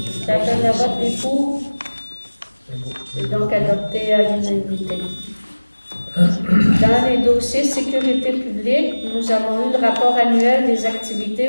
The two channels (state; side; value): inverted; both; correlation -1.00